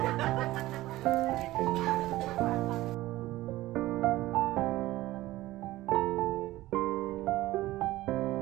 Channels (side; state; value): left; quieter; 17.0 dB